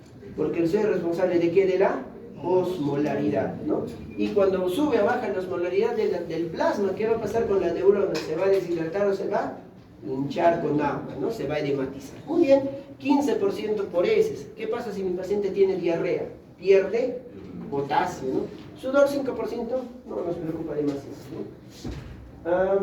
Porque el sodio es responsable de ¿qué? De la osmolaridad, ¿no? Y cuando sube o baja la osmolaridad del plasma, ¿qué va a pasar con la neurona? ¿Se va a deshidratar o se va a hinchar con agua, ¿no? Se va a edematizar. Muy bien, 15% por heces. ¿Qué pasa si mi paciente tiene diarrea? Pierde potasio, ¿no? Sudor 5%, no nos preocupa demasiado, ¿no?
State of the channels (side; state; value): both; identical; correlation 1.00